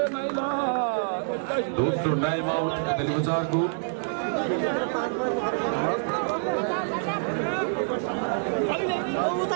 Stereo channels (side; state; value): left; silent; 60 dB below the other